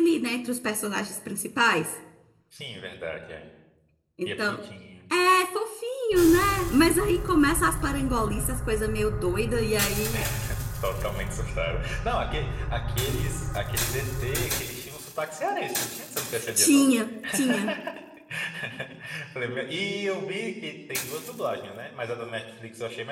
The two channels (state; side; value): identical; both; correlation 1.00